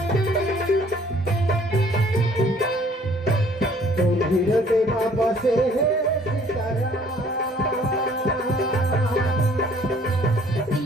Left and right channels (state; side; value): normal; both; correlation 0.58